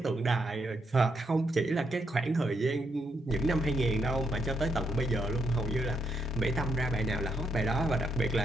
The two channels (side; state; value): both; normal; correlation 0.78